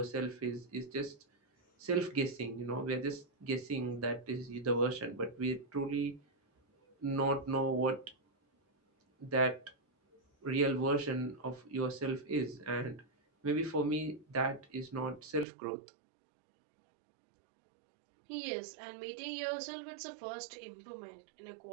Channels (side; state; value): left; drops out; at 15.5 s